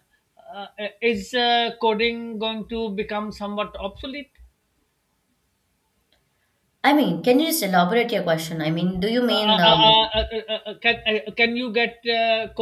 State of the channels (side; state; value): both; identical; correlation 1.00